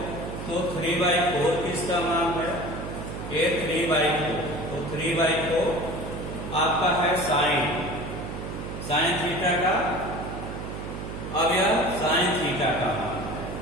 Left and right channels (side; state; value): right; noise; hum, 8 dB below the sound